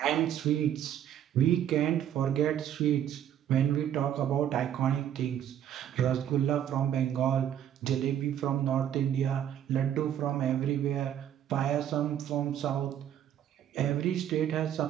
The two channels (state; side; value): quieter; left; 10.3 dB